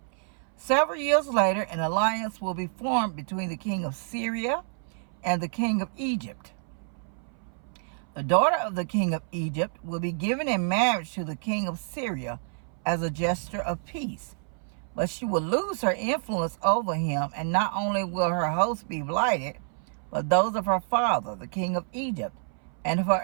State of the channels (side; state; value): left; silent; 59 dB below the other